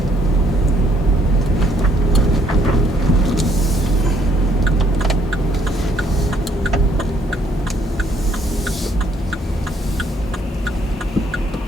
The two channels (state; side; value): normal; both; correlation 0.67